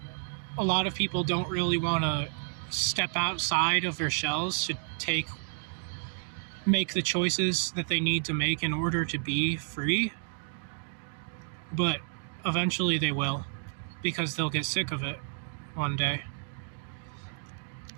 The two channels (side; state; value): left; silent; 57 dB below the other